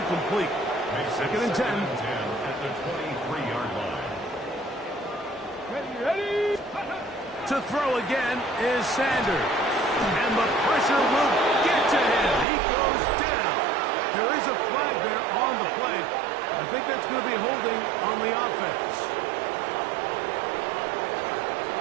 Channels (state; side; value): drops out; left; at 12.5 s